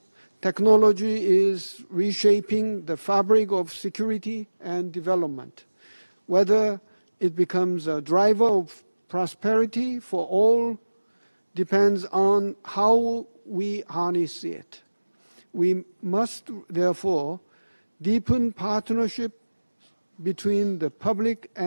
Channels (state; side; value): inverted; both; correlation -1.00